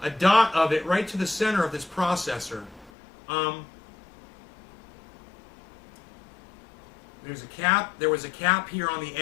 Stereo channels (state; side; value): drops out; right; at 2.9 s